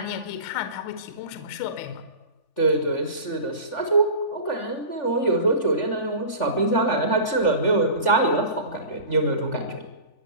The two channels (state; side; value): late; right; 3.4 ms